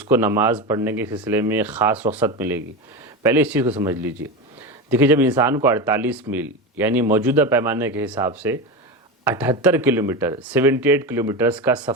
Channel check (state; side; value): normal; both; correlation 0.21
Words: کو نماز پڑھنے کے سلسلے میں ایک خاص رخصت ملے گی؟ پہلے اس چیز کو سمجھ لیجئے۔ دیکھیے، جب انسان کو 48 میل یعنی موجودہ پیمانے کے حساب سے 78 کلومیٹر 78 کلومیٹرز کا